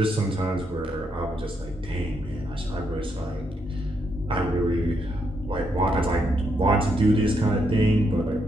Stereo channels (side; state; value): both; normal; correlation 0.78